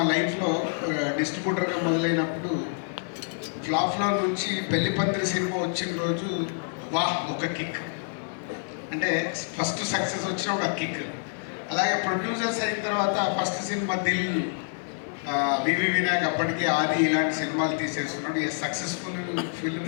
లైఫ్లో డిస్ట్రిబ్యూటర్గా మొదలైనప్పుడు ఫ్లాప్లో నుంచి పెళ్లి పందిరి సినిమా వచ్చిన రోజు వాహ్ ఒక కిక్, అంటే ఫస్ట్ సక్సెస్ వచ్చిన ఒక కిక్. అలాగే ప్రొడ్యూసర్స్ అయిన తర్వాత ఫస్ట్ సినిమా దిల్, వివి వినాయక్ అప్పటికి ఆది ఇలాంటి సినిమాలు తీసేస్తున్నాడు. సక్సెస్ఫుల్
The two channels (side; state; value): right; silent; digital silence